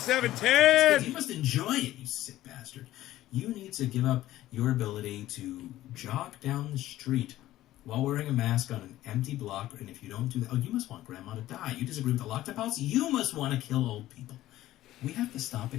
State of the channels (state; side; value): quieter; right; 14.9 dB